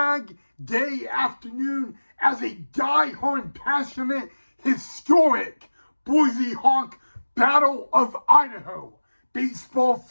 Day afternoon as a diehard passionate historic Boise Hawk Battle of Idaho baseball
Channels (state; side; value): inverted; both; correlation -1.00